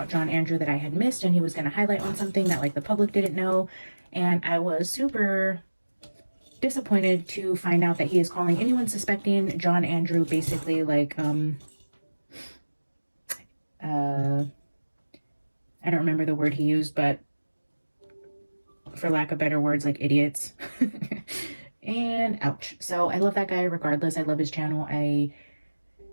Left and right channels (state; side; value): inverted; both; correlation -1.00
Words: John Andrew that I had missed, and he was going to highlight on something that like the public didn't know. And I was super disappointed to find out that he is calling anyone suspecting John Andrew basically like I don't remember the word he used, but for lack of better words, like idiots. And ouch. So I love that guy regardless. I love his channel. I